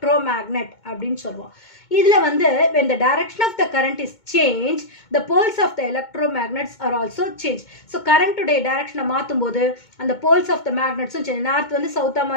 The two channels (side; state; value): right; late; 2.2 ms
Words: அப்படின்னு சொல்லுவோம். இதில் வந்து when the direction of the current is changed, the poles of the electromagnets are also changed. So கரண்ட்டுடைய டைரக்ஷனை மாற்றும் போது அந்த போல்ஸ் ஆஃப் த மேக்னெட்ஸும் சேஞ்ச், நார்த் வந்து சவுத்தாக